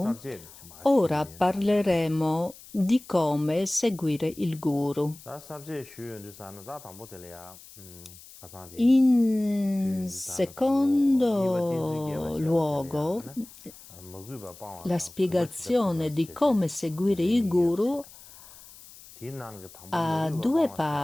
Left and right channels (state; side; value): noise; left; hiss, 20 dB below the sound